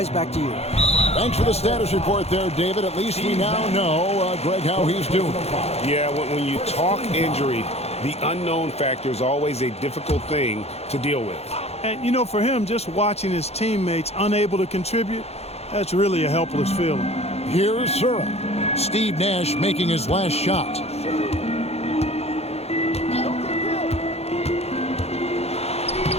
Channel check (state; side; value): late; right; 0.30 ms